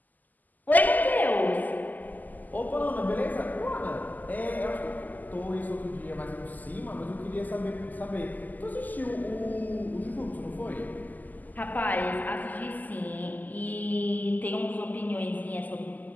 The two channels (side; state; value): right; late; 0.083 ms